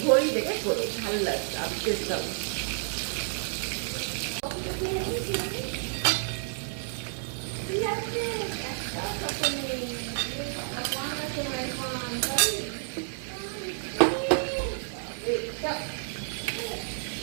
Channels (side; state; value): left; silent; 58 dB below the other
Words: ঘড়ি দেখে করো, ভালো লাগবে আর টেস্টটা।